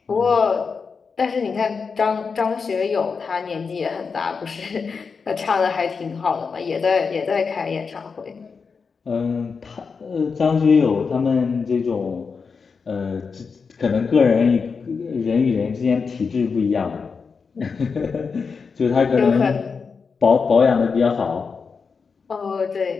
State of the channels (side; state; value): right; quieter; 5.3 dB